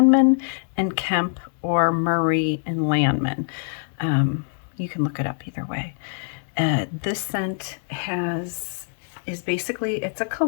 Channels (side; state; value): right; silent; digital silence